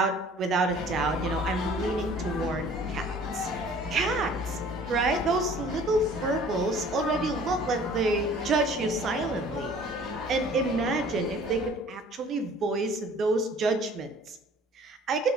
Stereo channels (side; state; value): both; normal; correlation 0.51